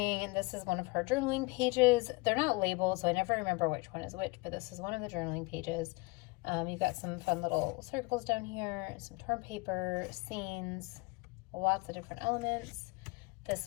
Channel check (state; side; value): quieter; right; 25.4 dB